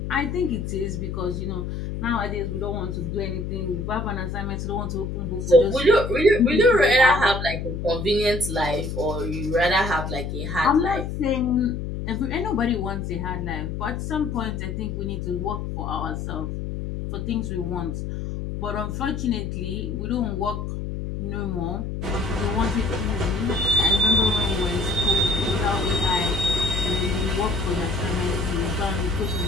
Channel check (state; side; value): noise; left; hum, 4 dB below the sound